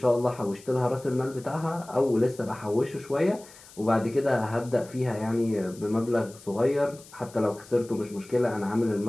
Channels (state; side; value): noise; left; hiss, 21 dB below the sound